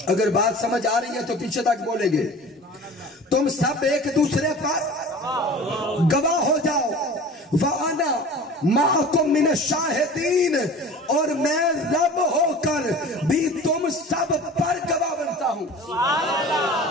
اگر بات سمجھ آ رہی ہے تو پیچھے تک بولیں گے. تم سب ایک دوسرے پر گواہ ہو جاؤ. وَأَنَا مَعَكُمْ مِنَ الشَّاهِدِينَ, اور میں رب ہو کر بھی تم سب پر گواہ بنتا ہوں.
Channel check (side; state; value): both; normal; correlation 0.40